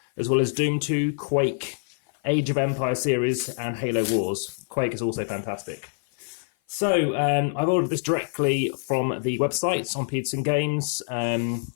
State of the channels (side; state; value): right; silent; 56 dB below the other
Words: as well as Doom 2, Quake, Age of Empires series, and Halo Wars. Quake is also fantastic. So I've ordered this directly from the website on Petersen Games.